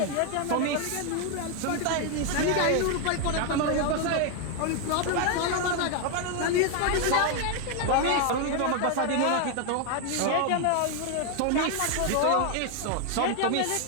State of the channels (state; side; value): different; both; correlation 0.01